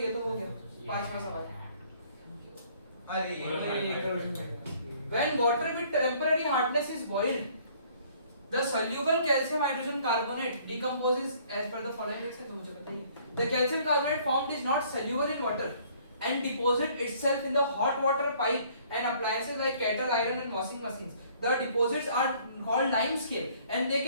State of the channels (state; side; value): inverted; both; correlation -0.59